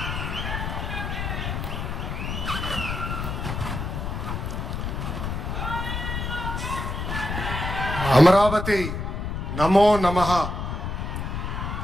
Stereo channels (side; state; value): left; noise; rumble, 3 dB below the sound